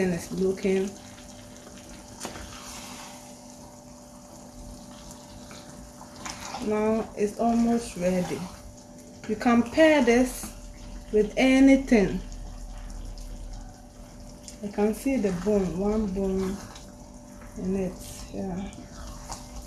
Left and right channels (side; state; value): both; identical; correlation 1.00